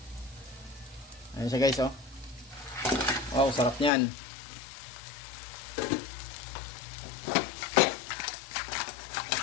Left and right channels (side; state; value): right; drops out; at 3.9 s